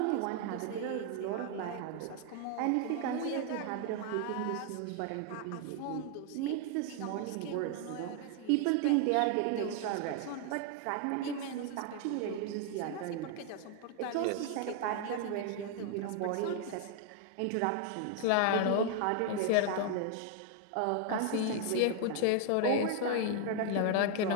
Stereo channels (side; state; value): both; different; correlation 0.00